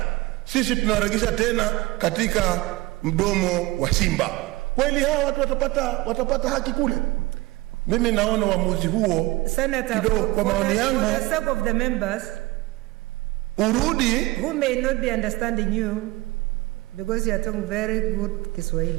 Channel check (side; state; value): left; quieter; 20.5 dB